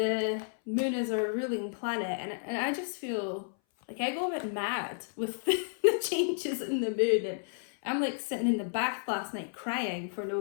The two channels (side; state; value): right; silent; 57 dB below the other